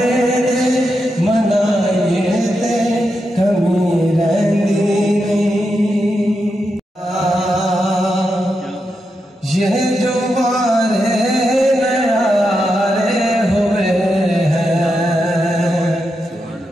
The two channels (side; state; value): both; normal; correlation 0.86